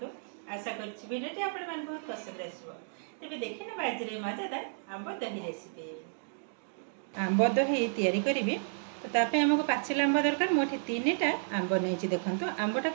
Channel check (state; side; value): silent; left; digital silence